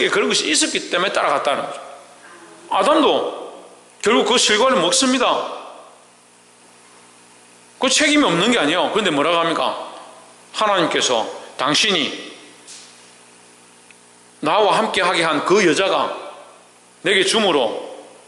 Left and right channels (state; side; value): identical; both; correlation 1.00